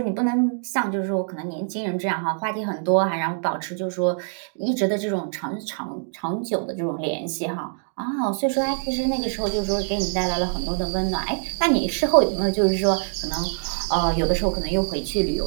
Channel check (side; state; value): left; silent; 62 dB below the other